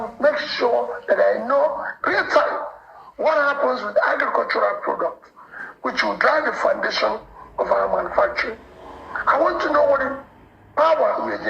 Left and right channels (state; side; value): identical; both; correlation 1.00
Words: make sure that I know real time what happens with agricultural products, which will drive the foundation of our manufacturing. I want to know what the power we are